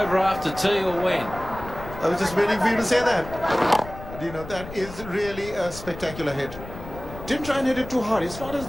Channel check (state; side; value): noise; left; rumble, 13 dB below the sound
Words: after tea or when. I was just waiting for you to say that. You know, that is really a spectacular hit. Didn't try and hit it too hard. It's not as